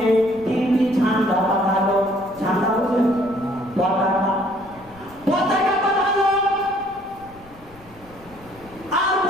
তিনটি ঝান্ডা পাঠালো। ঝান্ডা বলতে পতাকা পাঠালো, আর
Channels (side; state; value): left; noise; rumble, 23 dB below the sound